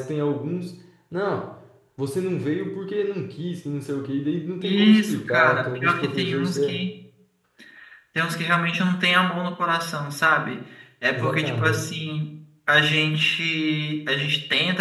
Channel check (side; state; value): both; identical; correlation 1.00